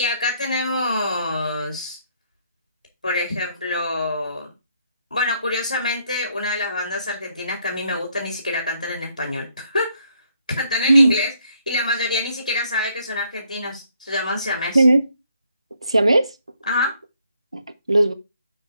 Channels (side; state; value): both; inverted; correlation -0.71